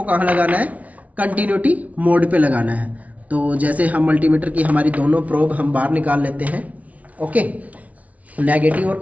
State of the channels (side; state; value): left; late; 0.069 ms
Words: कहाँ लगाना है? कंटिन्यूटी मोड पे लगाना है। तो जैसे हम मल्टीमीटर की हमारी दोनों प्रोब हम बाहर निकाल लेते हैं। ओके, नेगेटिव और